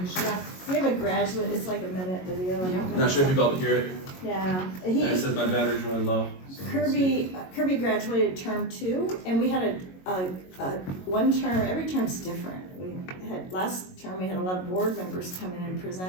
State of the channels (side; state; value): right; late; 22 ms